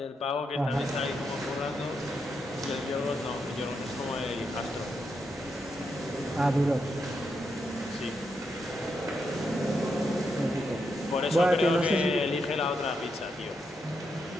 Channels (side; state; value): both; normal; correlation 0.82